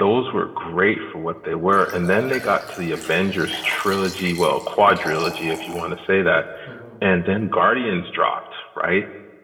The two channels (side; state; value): both; identical; correlation 1.00